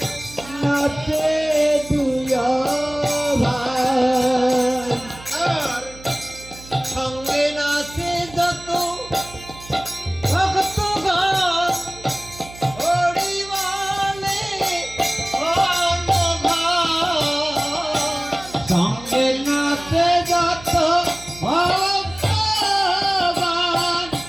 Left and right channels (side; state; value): right; noise; hum, 18 dB below the sound